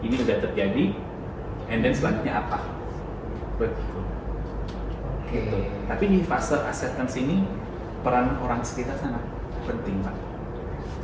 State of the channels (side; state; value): both; identical; correlation 1.00